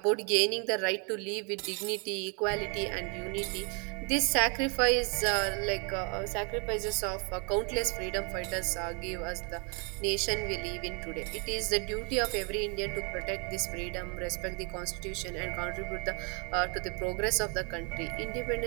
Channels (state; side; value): quieter; left; 35.1 dB